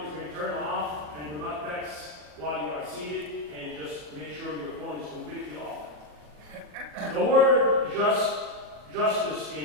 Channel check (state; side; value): late; left; 40 ms